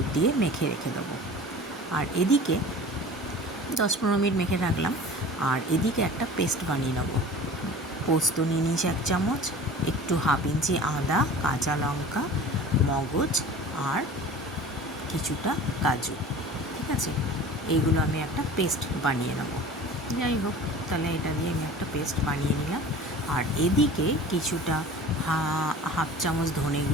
দিয়ে মেখে রেখে দেবো। আর এদিকে 10-15 মিনিট মেখে রাখলাম। আর এদিকে একটা পেস্ট বানিয়ে নেবো। পোস্ত নিয়ে নিয়েছি 1 চামচ, একটু 1/2 ইঞ্চি আদা, কাঁচা লঙ্কা, মগজ আর কিছুটা কাজু। ঠিক আছে, এইগুলো আমি একটা পেস্ট বানিয়ে নেব। যাই হোক, তাহলে এটা দিয়ে আমি একটা পেস্ট বানিয়ে নিলাম। আর এদিকে কিছুটা 1/2 চামচ ধনে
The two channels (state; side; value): normal; both; correlation 0.40